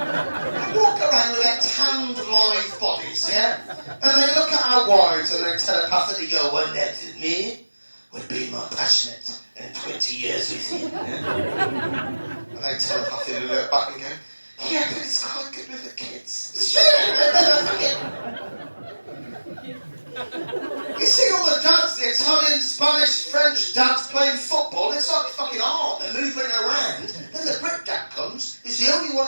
walk around with their tanned, live bodies, yeah? And they look at our wives and they telepathically go, well, that's me would be more passionate in 20 years with you. Yeah? And they telepathically look back and go, yeah, but it's quite good with the kids. It's true. You see all the Italian, Spanish, French dads playing football. It's like fucking art. They're moving around. Then the Brit dad comes. He's the only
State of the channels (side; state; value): both; inverted; correlation -1.00